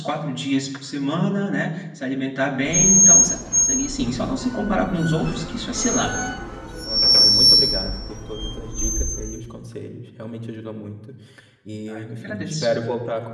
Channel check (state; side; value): identical; both; correlation 1.00